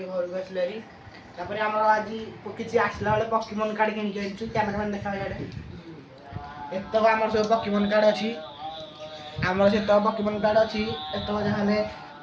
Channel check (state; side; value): identical; both; correlation 1.00